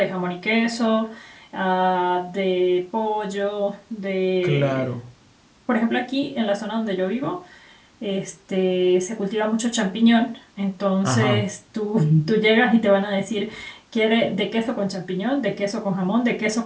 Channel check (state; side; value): identical; both; correlation 1.00